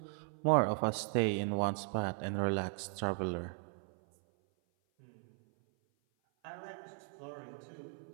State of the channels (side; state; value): left; silent; 53 dB below the other